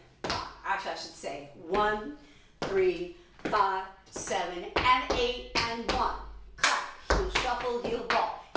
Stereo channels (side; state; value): both; identical; correlation 1.00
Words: 5. Actually, I should say 1, 3, 5, 7, and 8 and 1. Clap, heel, shuffle, heel, ball,